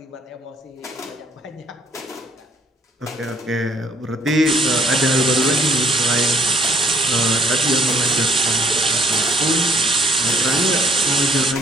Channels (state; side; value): normal; both; correlation 0.64